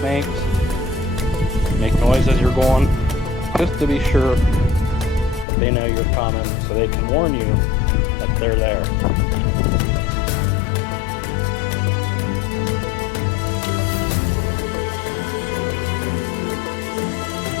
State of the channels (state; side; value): drops out; right; at 5.5 s